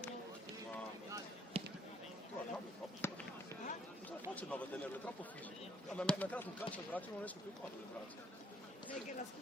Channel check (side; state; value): both; normal; correlation 0.65